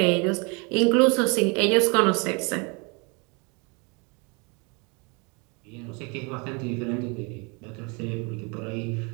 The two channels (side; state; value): left; quieter; 31.1 dB